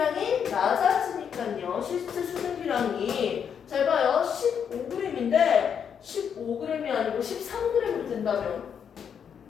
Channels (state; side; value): quieter; right; 7.6 dB